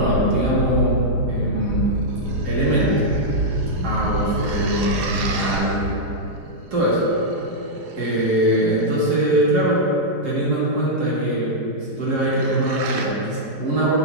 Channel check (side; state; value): left; late; 4.8 ms